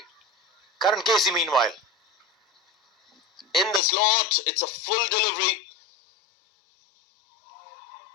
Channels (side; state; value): right; drops out; at 3.8 s